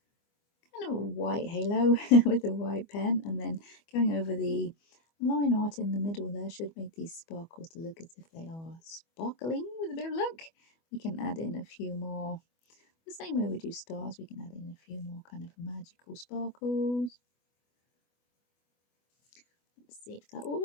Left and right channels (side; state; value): right; late; 24 ms